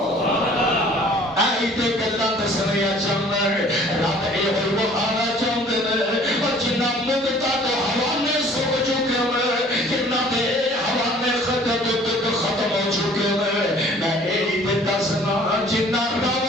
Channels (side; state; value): both; normal; correlation 0.53